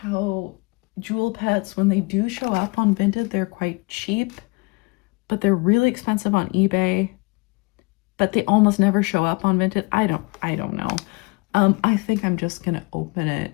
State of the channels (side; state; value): right; quieter; 27.8 dB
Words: how jewel pets, when they do show up on Vinted, they're quite cheap, but they're really expensive on eBay. But they almost never show up on Vinted. I don't know. I think I'm just gonna open it